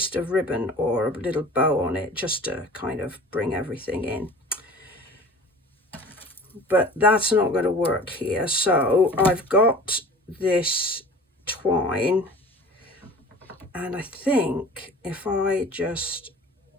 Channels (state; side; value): normal; both; correlation 0.42